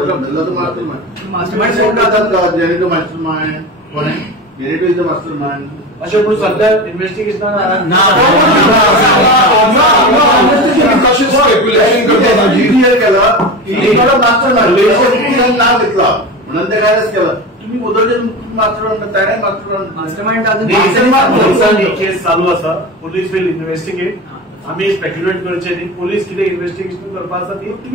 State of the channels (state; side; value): normal; both; correlation 0.26